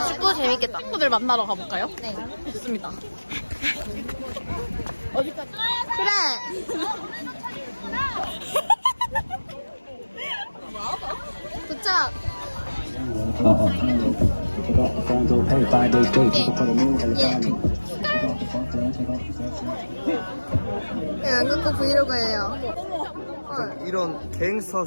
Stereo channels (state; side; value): inverted; both; correlation -1.00